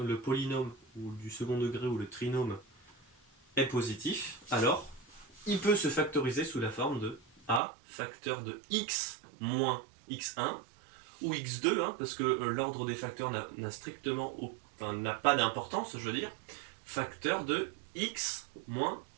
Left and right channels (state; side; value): drops out; left; at 7.6 s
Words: polynôme ou du second degré ou le trinôme est positif, alors il peut se factoriser sous la forme de a facteur de x moins x1 ou x2, hein, parce que l'ordre des facteurs n'a strictement, enfin, n'a pas d'importance, je veux dire, facteur de x moins